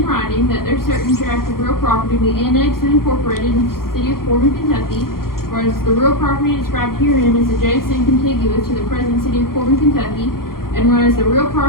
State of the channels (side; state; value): right; late; 0.92 ms